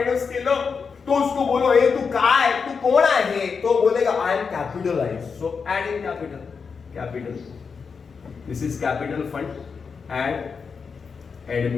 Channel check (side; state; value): right; quieter; 5.6 dB